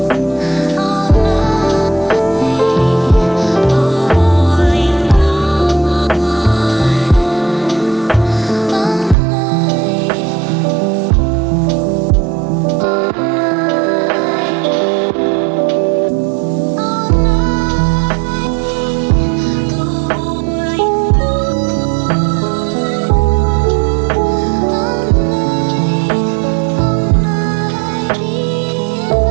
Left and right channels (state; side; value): drops out; left; at 9.2 s